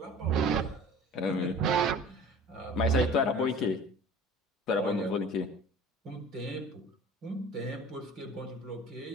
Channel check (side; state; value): both; normal; correlation 0.42